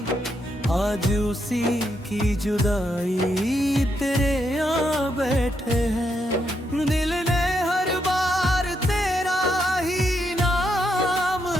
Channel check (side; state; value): both; normal; correlation 0.79